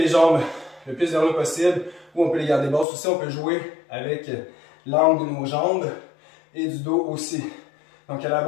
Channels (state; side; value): drops out; right; at 2.9 s